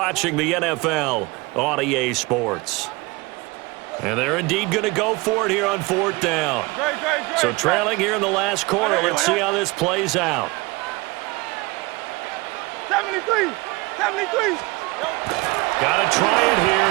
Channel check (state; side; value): quieter; left; 24.0 dB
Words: the NFL on EA Sports. And they're indeed going to go for it here on 4th down. Great. So trailing here in the last quarter. Let's see how this plays out. 73. Got to try it here.